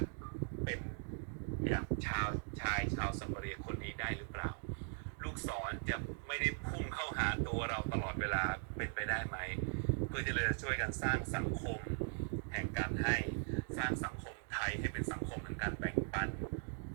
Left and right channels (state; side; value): silent; left; 51 dB below the other